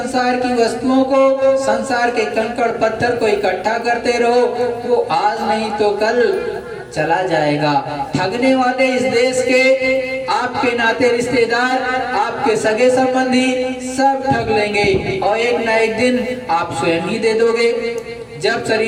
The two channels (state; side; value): identical; both; correlation 1.00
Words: की वस्तुओं को, संसार के कंकड़ पत्थर को इकट्ठा करते रहो, वो आज नहीं तो कल चला जाएगा। ठगने वाले इस देश के आपके नाते रिश्तेदार, आपके सगे संबंधी सब ठग लेंगे, और एक ना एक दिन आप स्वयं ही दे दोगे। जब